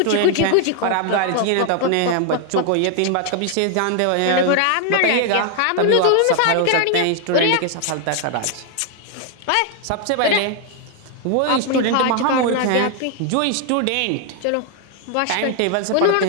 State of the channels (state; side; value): different; both; correlation 0.00